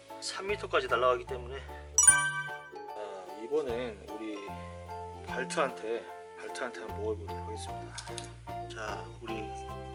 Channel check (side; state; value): both; identical; correlation 1.00